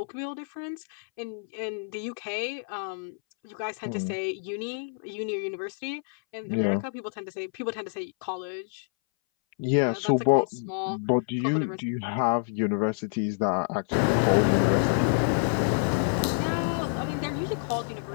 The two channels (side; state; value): right; silent; 59 dB below the other